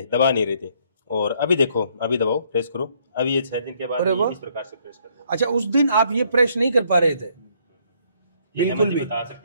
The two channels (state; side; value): inverted; both; correlation -0.68